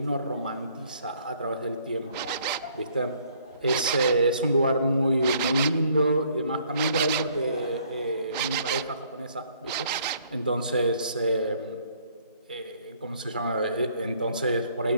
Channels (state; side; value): inverted; both; correlation -0.63